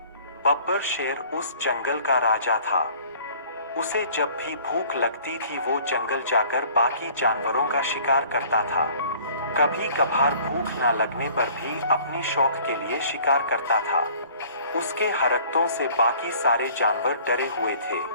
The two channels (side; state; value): both; inverted; correlation -0.53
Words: बब्बर शेर उस जंगल का राजा था। उसे जब भी भूख लगती थी वो जंगल जाकर बाकी जानवरों का शिकार करता था। कभी कभार भूख न लगने पर भी अपनी शौक के लिए शिकार करता था। उसके हरकतों से बाकी सारे जानवर डरे हुए थे।